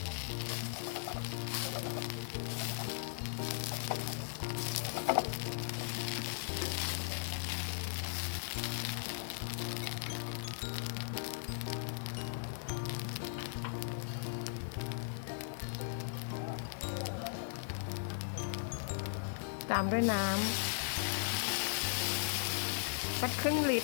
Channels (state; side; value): silent; right; digital silence